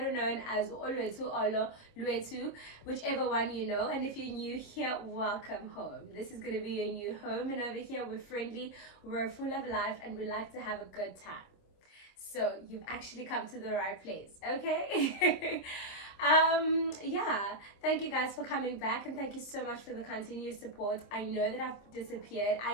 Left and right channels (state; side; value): late; right; 25 ms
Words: known as Olwetu Olo Lwetu, whichever one you know. And if you're new here, welcome home. This is going to be your new home, and over here we're friendly, we're full of life, and we like to have a good time. So you've actually come to the right place, okay? Yeah, thank you guys for coming back, and thank you so much for the continuous support. I know that I've disappeared,